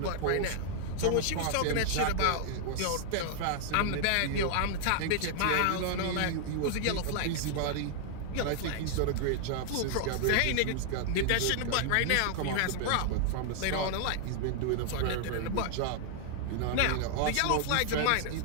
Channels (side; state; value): both; different; correlation 0.00